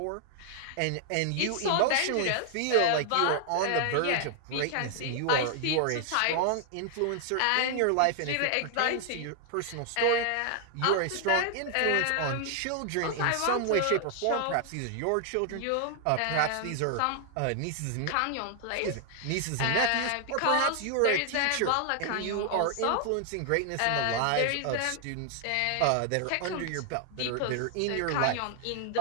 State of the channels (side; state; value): both; different; correlation 0.00